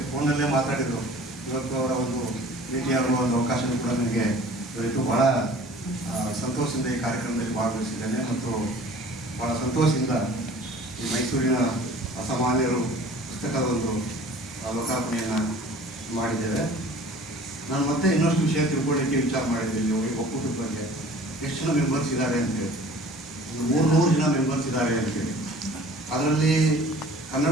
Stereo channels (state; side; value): normal; both; correlation 0.47